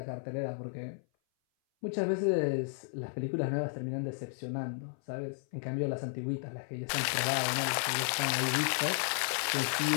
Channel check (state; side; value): silent; right; 56 dB below the other